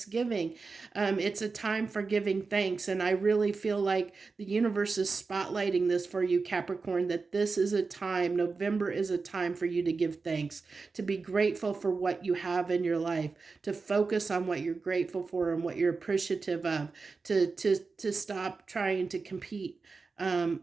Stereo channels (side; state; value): left; quieter; 4.4 dB